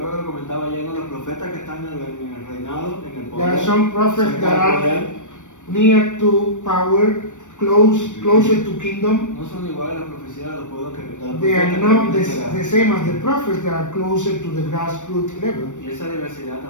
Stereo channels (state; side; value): late; right; 0.85 ms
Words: There are some prophets that are near to power, closer to kingdom. They are not the same as the prophets that are closer to the grassroots level.